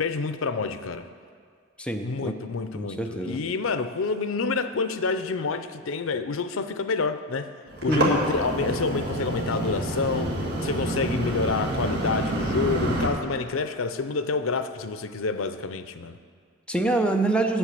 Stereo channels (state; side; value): normal; both; correlation 0.18